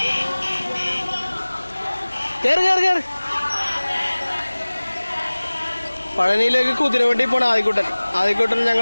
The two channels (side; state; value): both; inverted; correlation -1.00